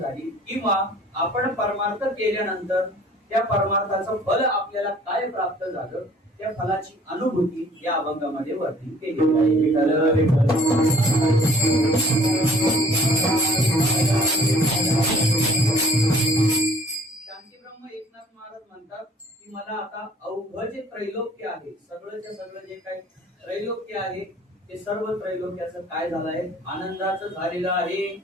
किंवा आपण परमार्थ केल्यानंतर त्या परमार्थाचं फल आपल्याला काय प्राप्त झालं त्या फलाची अनुभूती या अभंगामध्ये वर्णन केली आहे. विठ्ठल विठ्ठल शांती ब्रह्म एकनाथ महाराज म्हणतात की मला आता अवघ जे त्रैलोक्य आहे सगळंच्या सगळं जे काही त्रैलोक्य आहे ते सर्व त्रैलोक्याचं काय झालं आहे आनंदाचं झालेलं आहे.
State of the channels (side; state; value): both; normal; correlation 0.55